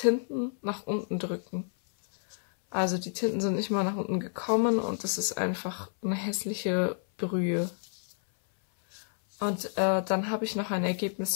nach unten drücken. Also die Tinten sind nicht mal nach unten gekommen und das ist einfach eine hässliche Brühe. Und dann habe ich noch ein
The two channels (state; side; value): silent; right; 58 dB below the other